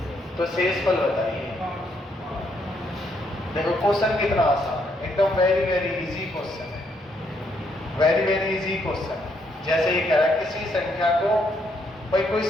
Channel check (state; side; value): normal; both; correlation 0.74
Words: तो शेष फल बताइए। देखो क्वेश्चन कितना आसान है, एकदम वेरी वेरी इजी क्वेश्चन है, वेरी वेरी इजी क्वेश्चन। जैसे ये कह रहा है किसी संख्या को, भाई कोई